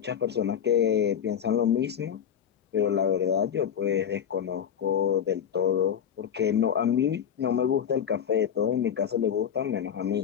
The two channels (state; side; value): quieter; right; 8.5 dB